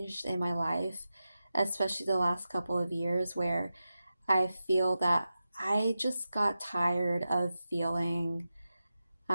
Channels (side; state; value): both; inverted; correlation -0.92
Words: in my life, especially the last couple of years where I feel that I just got tired of feeling